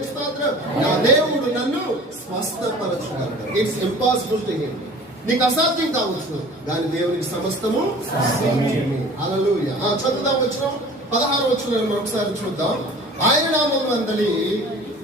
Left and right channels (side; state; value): both; normal; correlation 0.44